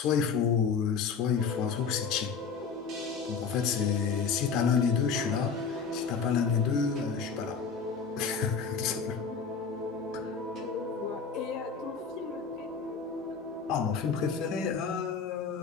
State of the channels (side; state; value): right; quieter; 5.7 dB